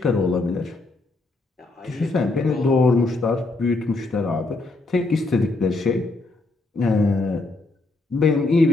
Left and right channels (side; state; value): right; quieter; 3.2 dB